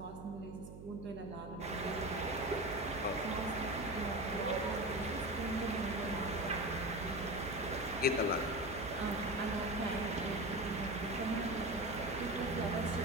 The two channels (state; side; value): noise; right; hum, 12 dB below the sound